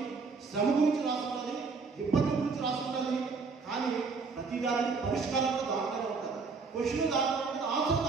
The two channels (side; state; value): left; quieter; 4.6 dB